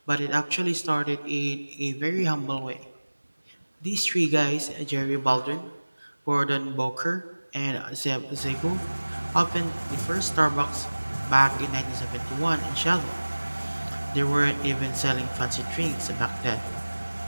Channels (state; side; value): inverted; both; correlation -1.00